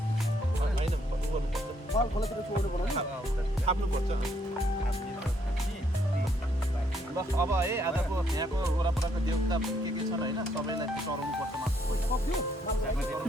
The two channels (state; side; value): normal; both; correlation 0.71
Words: होइन गर्नुपर्छ माल खोलातिर छोड्नु पर्यो नि थाप्नुपर्छ ल अब है आजको यहाँको वरपरको देउता के छन् होइन सबैलाई चढाउनु पर्छ